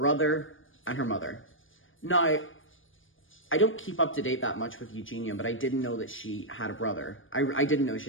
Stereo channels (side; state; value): right; late; 0.58 ms